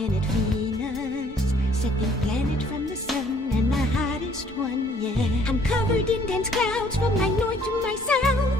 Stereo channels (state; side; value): normal; both; correlation 0.61